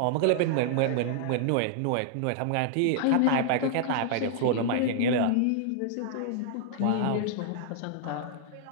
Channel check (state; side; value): different; both; correlation -0.01